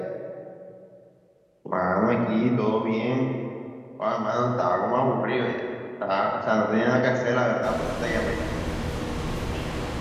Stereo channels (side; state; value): both; identical; correlation 1.00